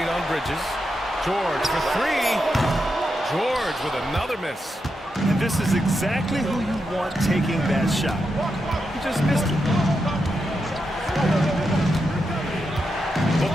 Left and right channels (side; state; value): both; normal; correlation 0.86